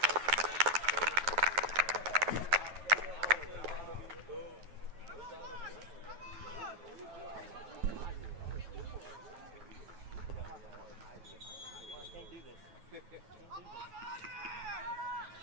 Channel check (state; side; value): late; left; 9.3 ms